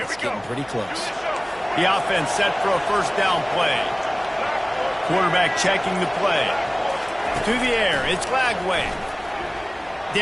it's getting pretty close. The offense set for a first down play. Quarterback checking the play. To the air, it's Flagway.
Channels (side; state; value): left; noise; hum, 27 dB below the sound